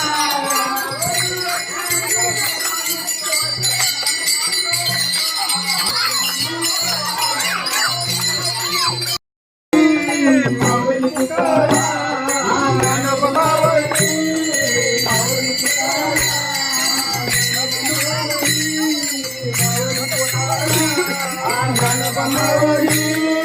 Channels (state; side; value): identical; both; correlation 1.00